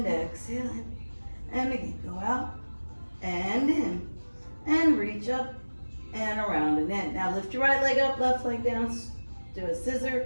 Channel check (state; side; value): inverted; both; correlation -1.00